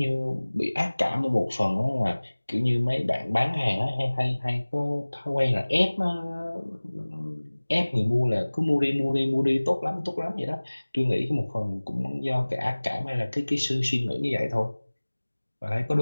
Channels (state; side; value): inverted; both; correlation -1.00